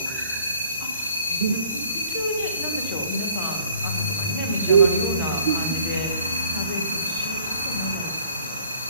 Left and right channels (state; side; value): inverted; both; correlation -0.57